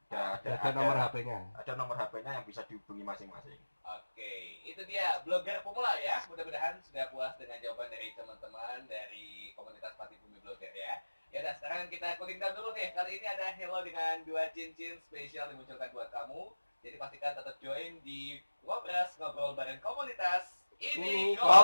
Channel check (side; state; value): both; inverted; correlation -1.00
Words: Ada nomor HP-nya. Ada nomor HP-nya yang bisa dihubungi masing-masing. Oke, itu dia blogger pemula ya. Mudah-mudahan sudah puas dengan jawaban dari teman-teman dari komunitas Pati Bumi Blogger ya. Ya udah, sekarang kita cooling down dulu nih. Kali ini ada Hello dengan 2 cincin spesial dimunculkan buat kamu. Jadi pastikan tetap join di Ngobras, ngobrol bareng komunitas. Ini